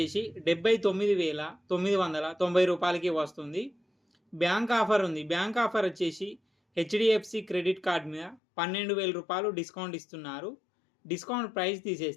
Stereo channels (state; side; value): drops out; right; at 8.4 s